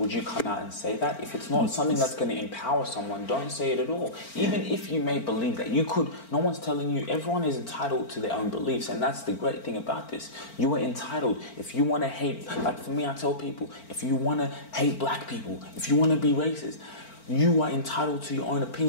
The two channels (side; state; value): right; late; 4.4 ms